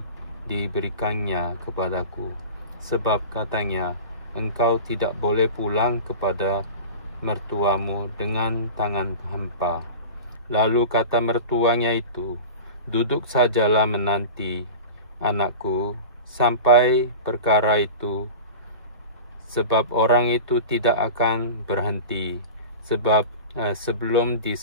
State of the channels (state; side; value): inverted; both; correlation -0.31